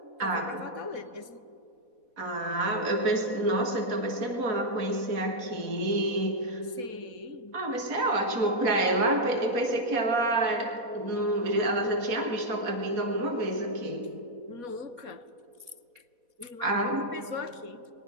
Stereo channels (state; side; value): late; left; 4.1 ms